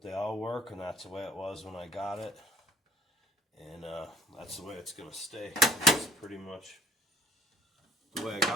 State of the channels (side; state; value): both; normal; correlation 0.55